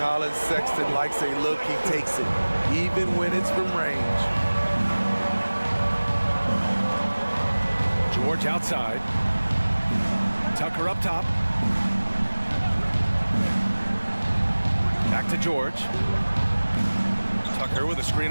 Sexton likes a look, he takes it, even when it's from range. George outside. Tucker up top. Back to George. Tucker with a screen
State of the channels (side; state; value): both; inverted; correlation -1.00